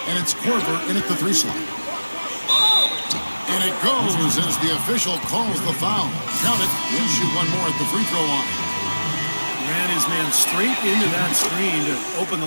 and it's Korver in at the 3 slot. And it goes as the official calls the foul. Count it. He'll shoot one more at the free throw line. Ran his man straight into that screen to open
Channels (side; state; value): both; inverted; correlation -1.00